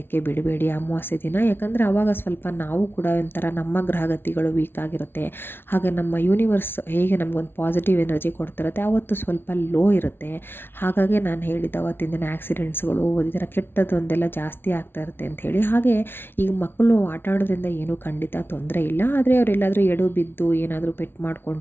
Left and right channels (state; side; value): late; right; 0.11 ms